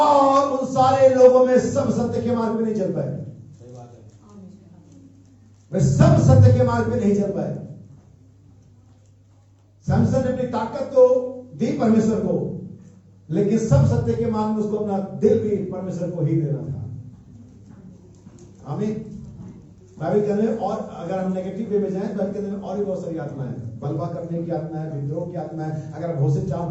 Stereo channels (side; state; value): both; identical; correlation 1.00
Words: उन सारे लोगों में सब सत्य के मार्ग पे नहीं चल पाए, वे सब सत्य के मार्ग पे नहीं चल पाए। सैमसन ने अपनी ताकत तो दी परमेश्वर को, लेकिन सब सत्य के मार्ग में उसको अपना दिल भी परमेश्वर को ही देना था। आमीन। बाइबल के अंदर, और अगर हम नेगेटिव वे में जाएं, बाइबल के अंदर और भी बहुत सारी आत्मा है। बलवा करने की आत्मा है, विद्रोह की आत्मा है। अगर हम होशे